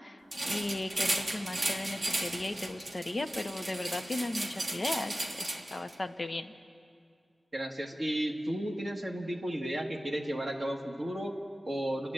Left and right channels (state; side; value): normal; both; correlation 0.95